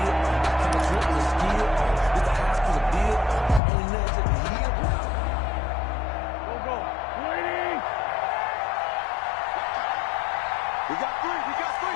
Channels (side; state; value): right; drops out; at 3.6 s